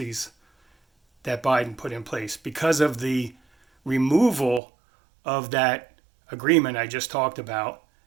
that Biden put in place, because of the removal of that agreement I just talked about,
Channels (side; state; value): left; drops out; at 4.6 s